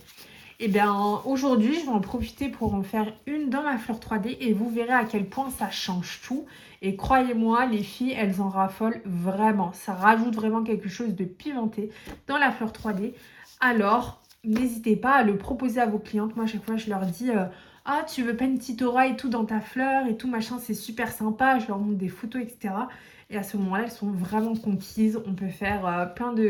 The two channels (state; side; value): identical; both; correlation 1.00